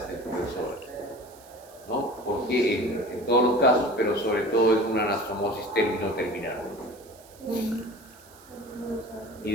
compresor, ¿no? Porque en todos los casos, pero sobre todo es una anastomosis término-terminal. Y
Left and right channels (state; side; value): noise; right; hiss, 24 dB below the sound